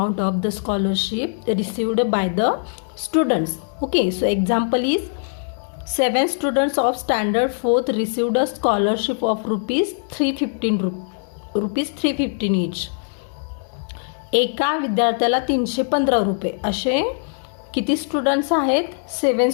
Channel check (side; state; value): right; silent; digital silence